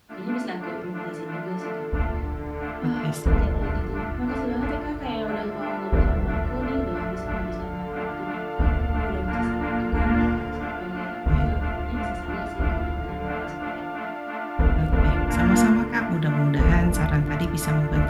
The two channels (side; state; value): both; identical; correlation 1.00